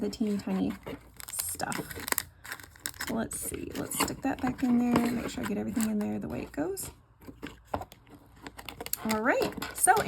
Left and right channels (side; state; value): both; identical; correlation 1.00